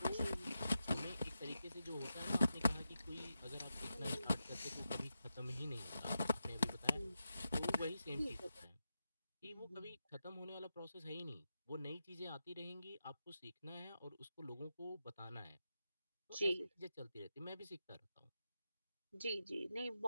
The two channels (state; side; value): inverted; both; correlation -0.88